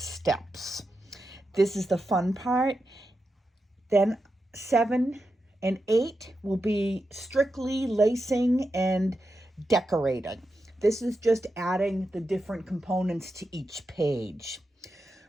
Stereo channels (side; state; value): both; normal; correlation 0.88